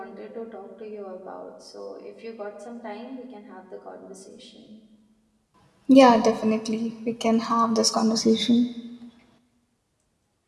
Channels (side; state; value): both; identical; correlation 1.00